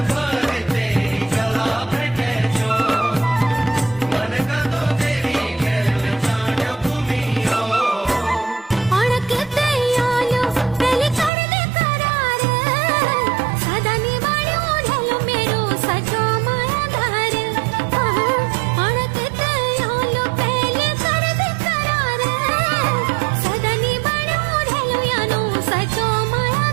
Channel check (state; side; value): drops out; left; at 11.3 s